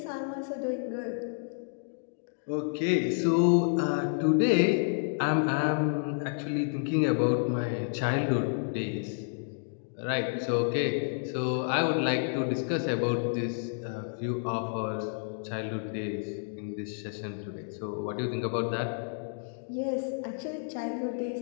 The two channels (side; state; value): right; silent; digital silence